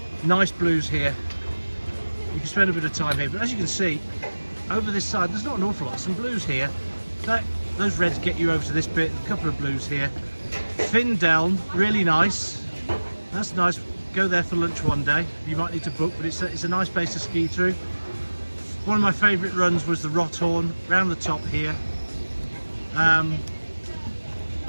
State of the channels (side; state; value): both; inverted; correlation -1.00